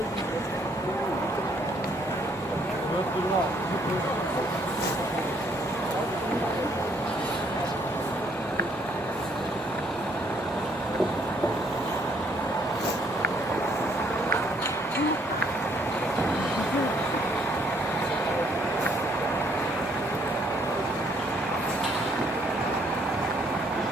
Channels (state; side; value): normal; both; correlation 0.67